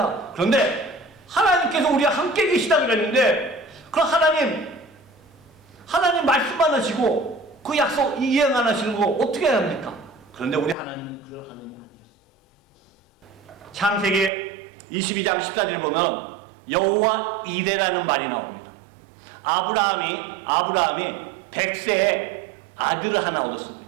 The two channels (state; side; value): drops out; left; at 14.3 s